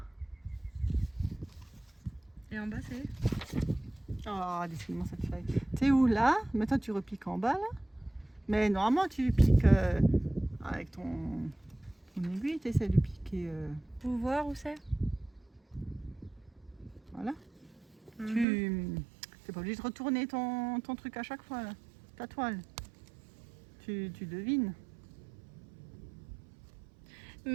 Et en bas, c'est. Oh, décidément cette feuille. T'es où là? Maintenant, tu repiques en bas là. Mais normalement, tu piques avec ton aiguille. Tu essaies de piquer. Pour voir où c'est? Voilà. Mhm. Tu n'es pas obligé de retourner ton truc à chaque fois, là. Ta toile. Tu devines.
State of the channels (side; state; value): left; drops out; at 18.4 s